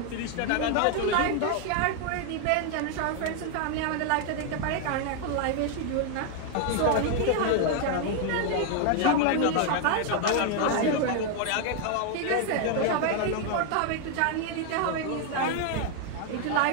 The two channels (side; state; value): both; different; correlation 0.00